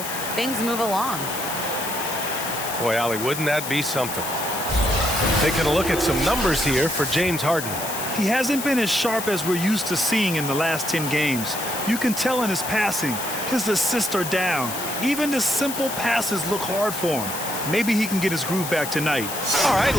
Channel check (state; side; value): noise; left; hiss, 7 dB below the sound